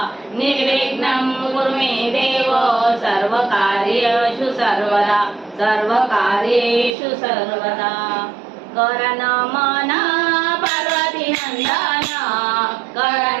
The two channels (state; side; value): drops out; left; at 7.0 s